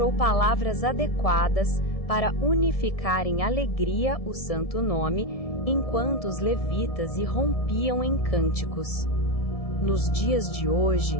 palavras adequadas para unificar em alegria o santo nome, enquanto os levitas irrompiam em cânticos. Nos dias de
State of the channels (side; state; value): right; late; 1.7 ms